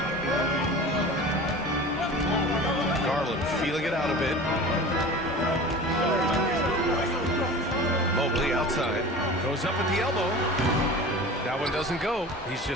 Garland feeling it out a bit. Mobley outside. Goes up at the elbow. That one doesn't go. He's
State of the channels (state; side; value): normal; both; correlation 0.37